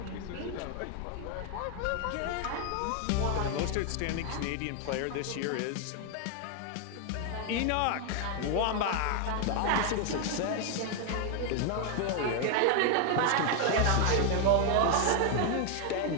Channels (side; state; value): both; different; correlation 0.00